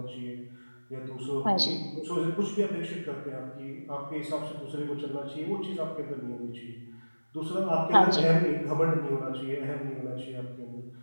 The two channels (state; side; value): inverted; both; correlation -1.00